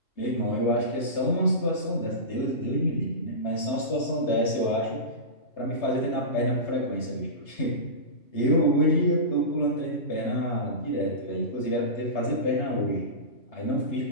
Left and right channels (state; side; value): late; right; 3.3 ms